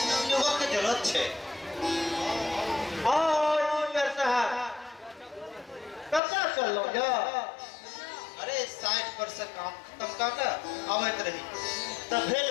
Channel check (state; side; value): drops out; right; at 6.2 s